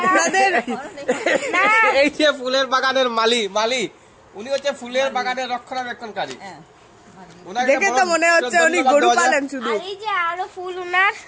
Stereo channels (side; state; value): both; identical; correlation 1.00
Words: এই যে ফুলের বাগানের মালিক উনি হচ্ছে ফুলের বাগানের রক্ষণাবেক্ষণকারী। দেখে তো মনে হচ্ছে উনি গরু পালেন শুধু। আর এই যে আরো ফুল উনার